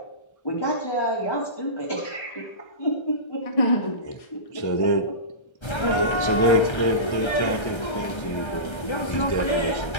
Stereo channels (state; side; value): late; right; 1.3 ms